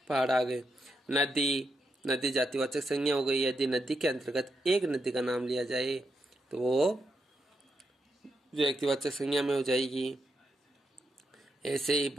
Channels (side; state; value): both; normal; correlation 0.83